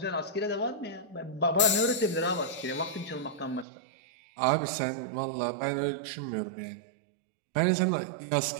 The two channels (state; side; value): drops out; left; at 3.7 s